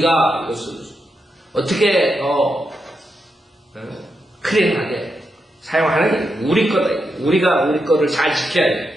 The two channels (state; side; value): normal; both; correlation 0.85